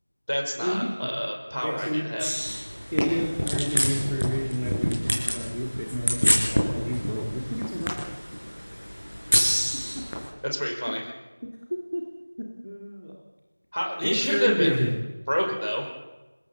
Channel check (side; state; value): both; inverted; correlation -1.00